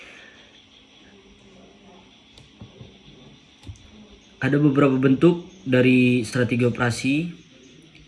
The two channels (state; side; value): identical; both; correlation 1.00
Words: Ada beberapa bentuk dari strategi operasi,